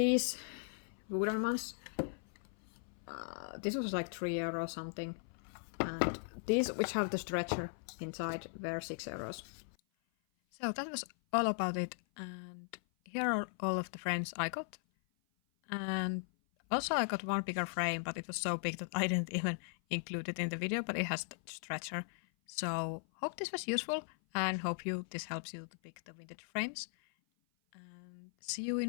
wooden ones, this was like €3 something, and these which have the stretcher inside were €6. So that was all about it, and here are all of the frames I got. And also I got one bigger frame, but it was so big that I didn't even include it in the video, but it has the stretcher. So hope this was useful and hope this helps you to pick the vintage frames. And see you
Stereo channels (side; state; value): right; silent; 52 dB below the other